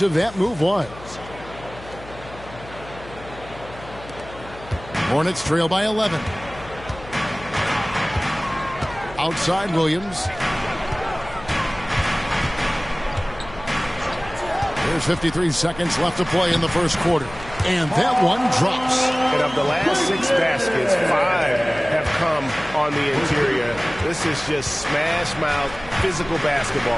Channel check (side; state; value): left; noise; hum, 17 dB below the sound